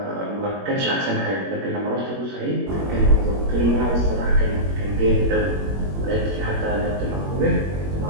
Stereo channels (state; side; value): late; left; 21 ms